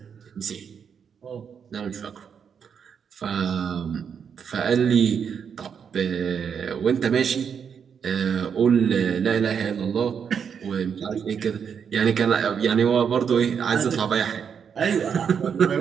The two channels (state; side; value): quieter; left; 7.1 dB